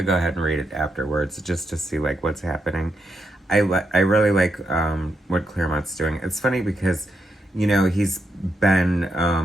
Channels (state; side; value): normal; both; correlation 0.82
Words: go ahead and read it afterwards just to see like what's happening. I really like what Claremont's doing. It's funny because, you know, he's been